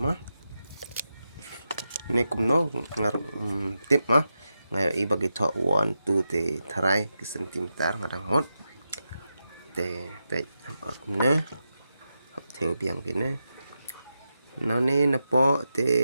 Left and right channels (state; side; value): inverted; both; correlation -0.89